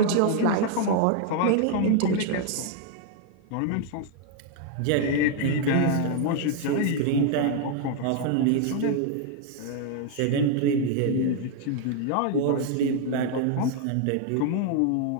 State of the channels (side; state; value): both; different; correlation 0.00